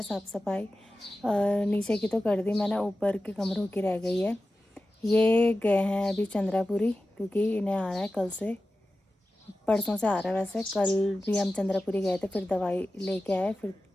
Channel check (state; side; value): normal; both; correlation 0.94